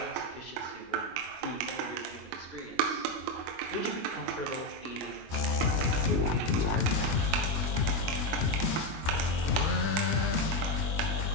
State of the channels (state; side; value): late; left; 25 ms